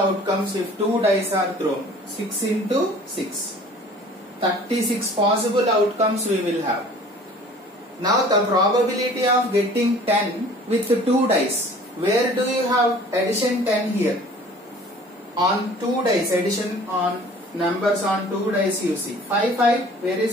if two dice are thrown. 6 into 6. 36 possible outcomes we will have. Now the probability of getting 10 with 2 dice. Where do you have addition 10 here? On 2 dice, addition on numbers on 2 dice you see. 5, 5, where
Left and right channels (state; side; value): normal; both; correlation 0.49